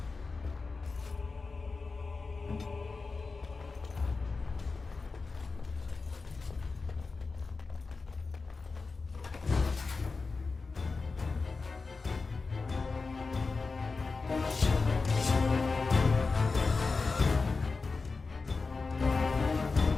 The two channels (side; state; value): right; quieter; 4.2 dB